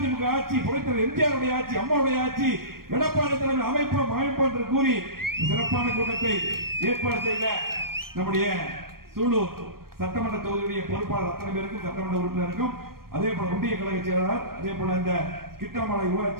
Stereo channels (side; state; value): left; late; 0.93 ms